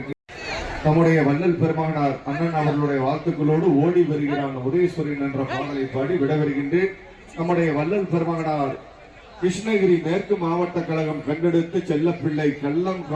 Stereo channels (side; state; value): both; identical; correlation 1.00